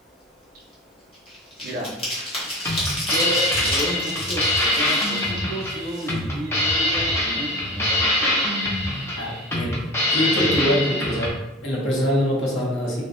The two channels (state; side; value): normal; both; correlation 0.33